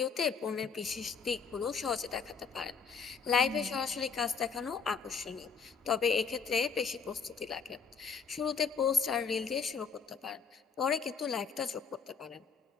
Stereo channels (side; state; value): right; quieter; 5.8 dB